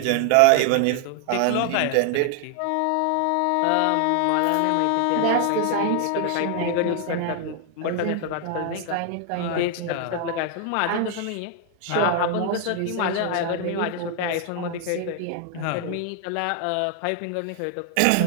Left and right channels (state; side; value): different; both; correlation 0.00